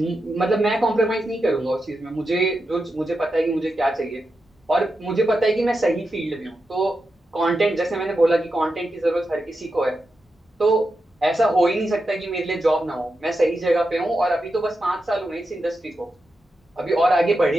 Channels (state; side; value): normal; both; correlation 0.88